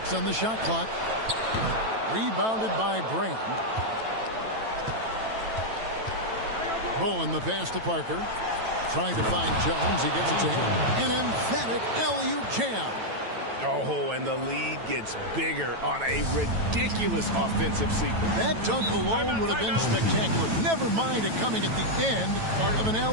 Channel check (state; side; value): late; left; 9.1 ms